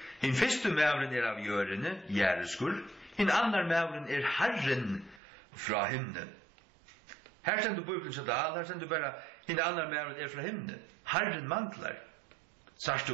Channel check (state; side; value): drops out; left; at 5.2 s